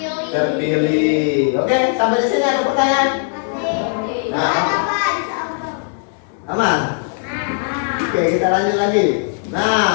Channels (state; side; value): silent; right; 65 dB below the other